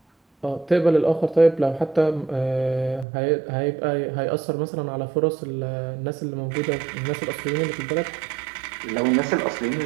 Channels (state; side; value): drops out; left; at 3.1 s